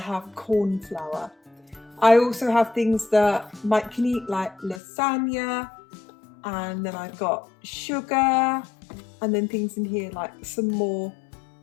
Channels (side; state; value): right; drops out; at 4.8 s